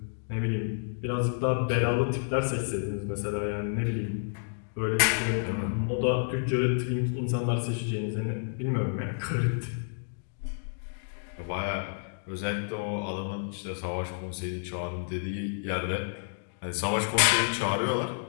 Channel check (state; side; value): silent; right; digital silence